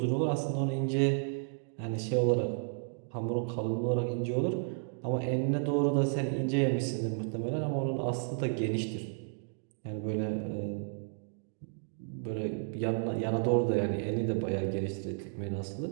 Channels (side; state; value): left; silent; digital silence